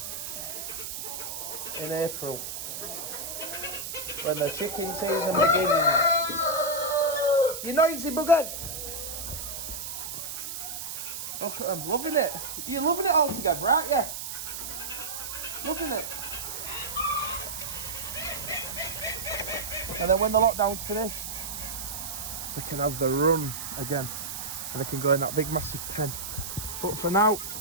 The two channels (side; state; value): right; noise; hiss, 6 dB below the sound